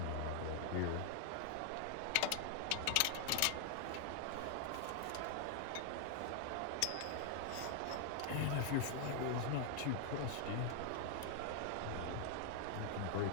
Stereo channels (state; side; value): different; both; correlation 0.00